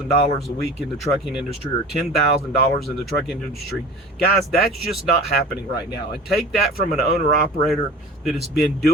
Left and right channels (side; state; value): both; normal; correlation 0.39